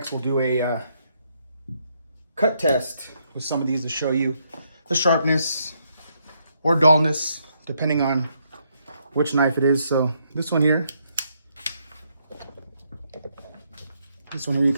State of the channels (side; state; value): both; inverted; correlation -0.75